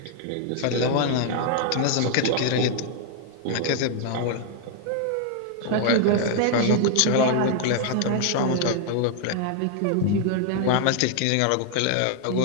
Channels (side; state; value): both; different; correlation 0.00